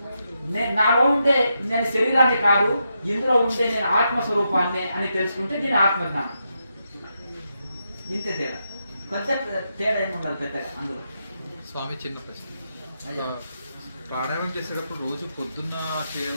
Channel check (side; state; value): both; inverted; correlation -0.84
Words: నాలో ఉండే నేను శరీరాన్ని కాదు, ఇందులో ఉండే నేను ఆత్మస్వరూపాన్ని అని తెలుసుకుంటే దీని ఆత్మజ్ఞానం. ఇంతే తేడా, కొంచెం తేడా ఏమి ఉండదు పెద్దగా అందులో. స్వామి, చిన్న ప్రశ్న. ప్రాణాయామం చేసేటప్పుడు రోజు పొద్దున్న